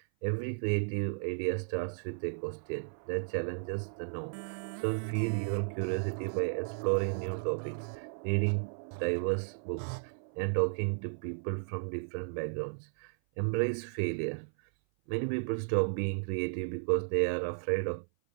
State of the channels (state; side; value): silent; left; 55 dB below the other